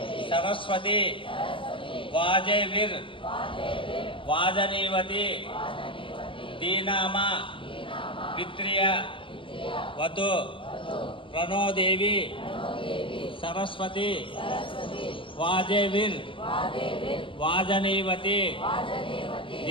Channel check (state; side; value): late; right; 0.25 ms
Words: सरस्वती वाजैर् वाजनीवती दीनामा पित्र्य वतु प्रणो देवी सरस्वती वाजैर् वाजनीवती